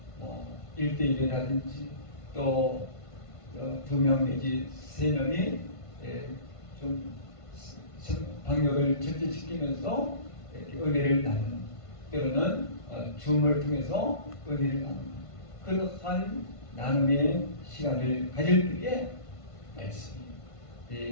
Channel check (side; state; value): right; late; 1.5 ms